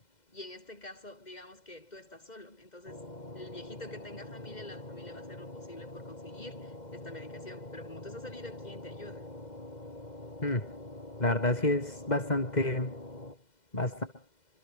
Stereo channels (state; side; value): late; right; 2.0 ms